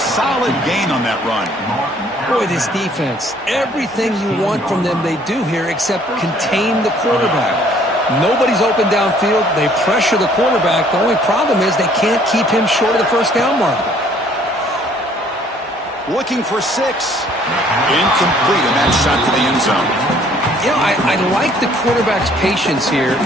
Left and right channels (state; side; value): normal; both; correlation 0.59